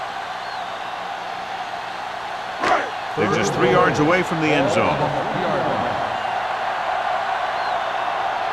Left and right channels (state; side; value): identical; both; correlation 1.00